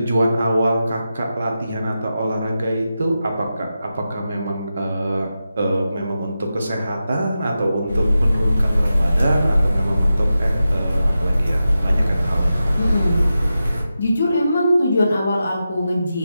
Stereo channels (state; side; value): inverted; both; correlation -0.91